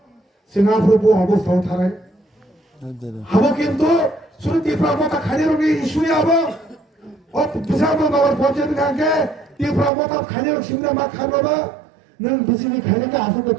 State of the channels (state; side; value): drops out; left; at 9.9 s